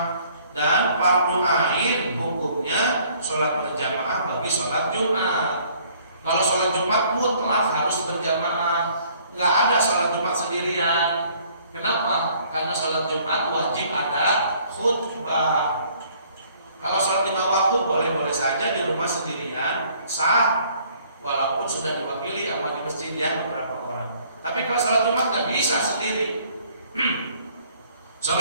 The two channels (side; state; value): both; inverted; correlation -0.60